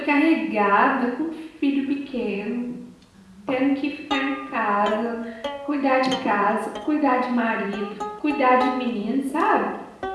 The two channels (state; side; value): identical; both; correlation 1.00